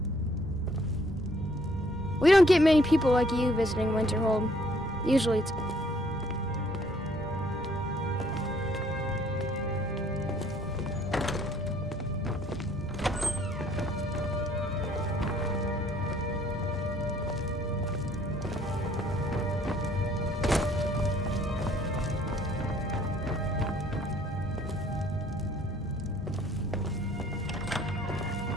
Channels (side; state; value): both; normal; correlation 0.62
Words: We don't get many people like you visiting Winterhold. Usually it's...